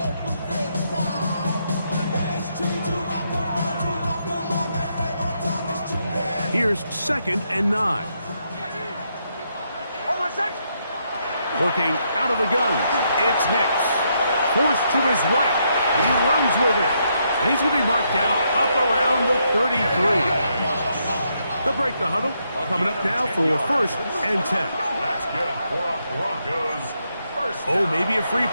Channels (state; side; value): inverted; both; correlation -0.77